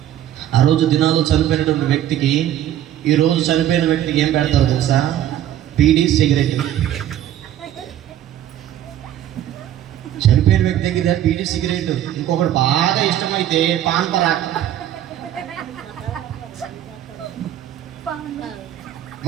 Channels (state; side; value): quieter; left; 11.7 dB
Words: ఆ రోజు దినాలు చనిపోయినటువంటి వ్యక్తికి, ఈ రోజు చనిపోయిన వ్యక్తికి ఏం పెడతారు తెలుసా? బీడీ, సిగరెట్. చనిపోయిన వ్యక్తి దగ్గర బీడీ, సిగరెట్. ఇంకొకటి బాగా ఇష్టమైతే పాన్ పరాక్.